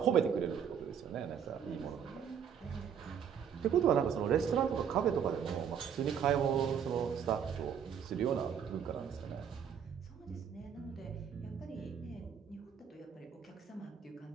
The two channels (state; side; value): quieter; left; 8.0 dB